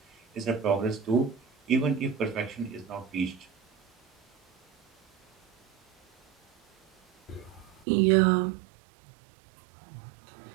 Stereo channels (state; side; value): drops out; left; at 7.9 s